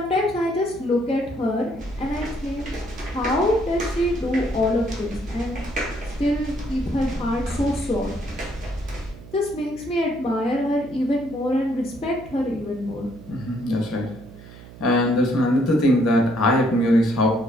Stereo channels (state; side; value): noise; right; hum, 18 dB below the sound